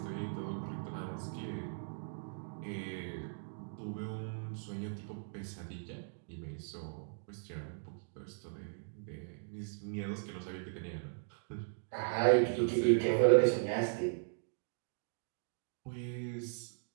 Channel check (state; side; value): silent; left; digital silence